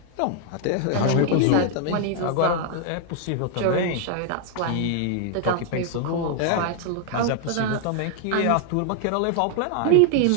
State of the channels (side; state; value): both; different; correlation 0.00